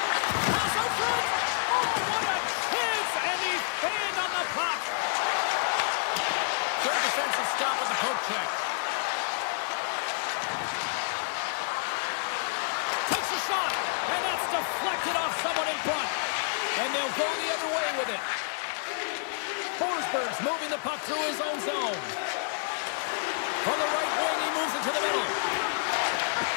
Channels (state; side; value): silent; right; digital silence